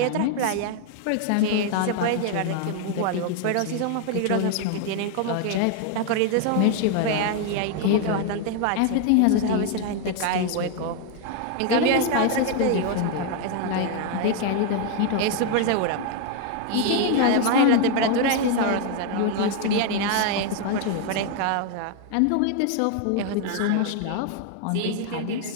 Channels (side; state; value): both; different; correlation 0.01